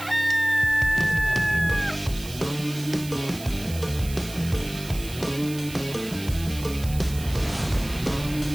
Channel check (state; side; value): noise; right; hiss, 14 dB below the sound